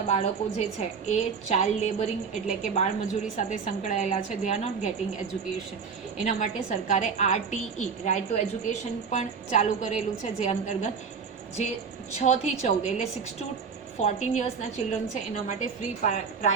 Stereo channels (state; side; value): quieter; left; 5.8 dB